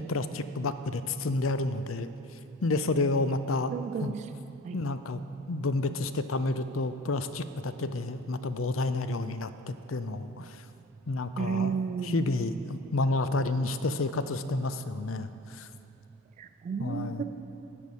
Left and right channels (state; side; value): normal; both; correlation 0.42